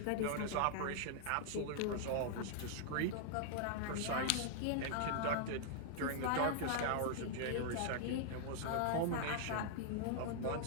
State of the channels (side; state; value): both; different; correlation -0.01